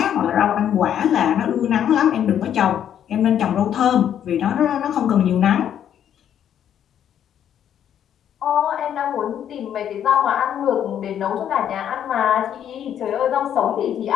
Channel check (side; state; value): right; quieter; 9.7 dB